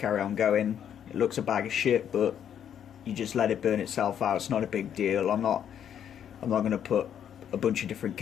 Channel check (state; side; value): quieter; right; 9.2 dB